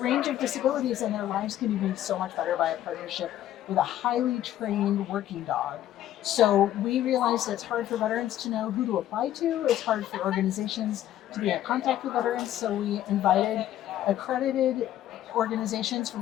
of disabilities and their lives can be made so much better by a partnership with a highly trained working dog. So we realize that it's hard for veterans to know who to apply to. It's hard for organizations to be in contact with veterans. So we invited accredited organizations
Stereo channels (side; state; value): right; quieter; 12.5 dB